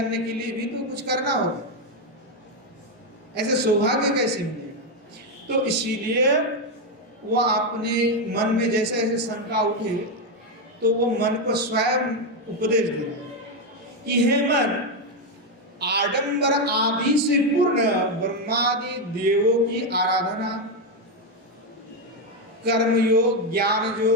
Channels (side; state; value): both; normal; correlation 0.06